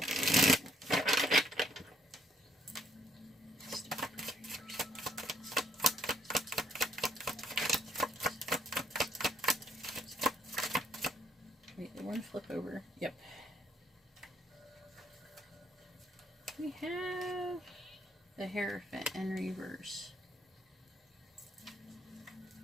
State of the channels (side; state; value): both; normal; correlation 0.68